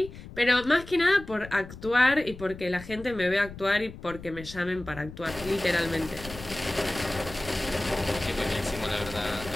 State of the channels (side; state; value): left; noise; rumble, 14 dB below the sound